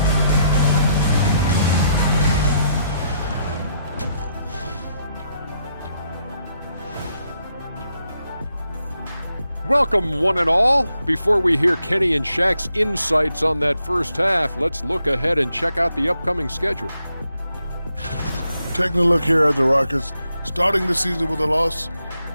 Welcome, one and all. Before we hear Kenny and Shaq's insights on that first half, let's look ahead and check out the upcoming schedule. Taking a look here at the Rockets, starting the season with a loss,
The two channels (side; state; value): both; inverted; correlation -0.78